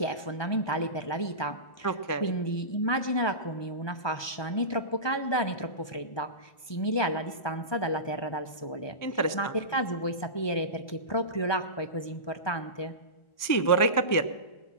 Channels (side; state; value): right; late; 1.2 ms